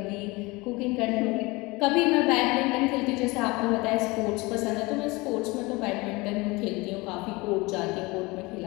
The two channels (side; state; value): right; quieter; 23.8 dB